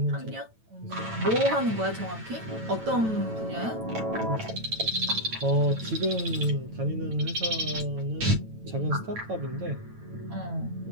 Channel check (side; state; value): left; late; 9.0 ms